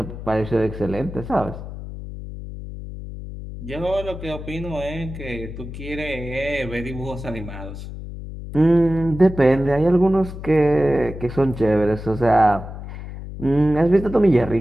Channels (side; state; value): left; noise; hum, 10 dB below the sound